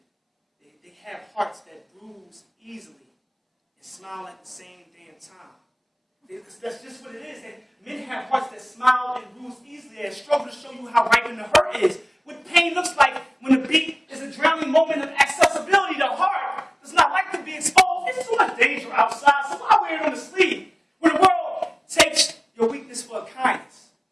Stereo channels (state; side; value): identical; both; correlation 1.00